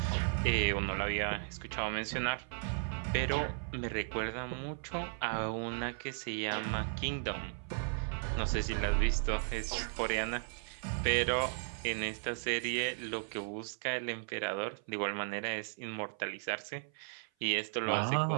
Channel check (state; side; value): silent; left; 54 dB below the other